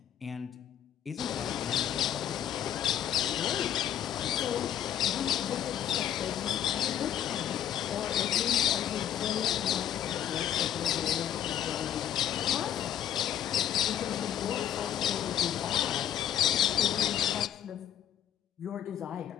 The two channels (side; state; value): right; quieter; 10.4 dB